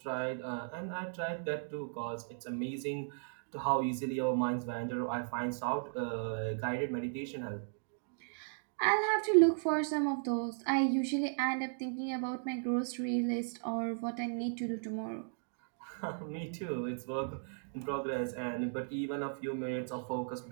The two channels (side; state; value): left; silent; digital silence